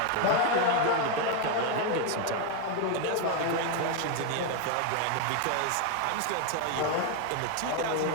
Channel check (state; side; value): different; both; correlation 0.01